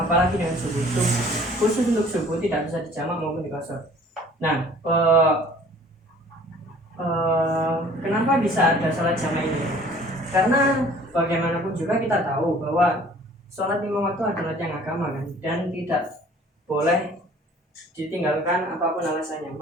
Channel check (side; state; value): both; normal; correlation 0.52